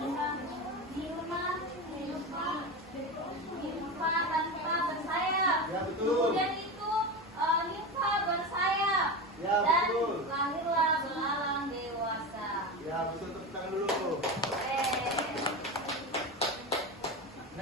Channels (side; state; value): both; normal; correlation 0.22